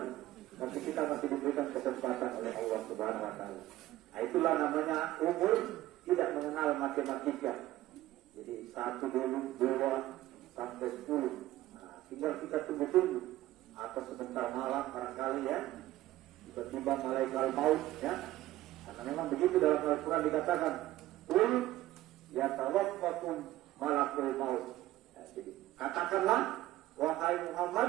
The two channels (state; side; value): quieter; left; 15.5 dB